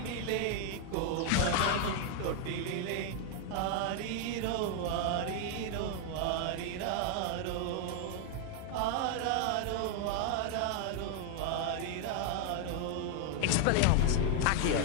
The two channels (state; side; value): different; both; correlation 0.00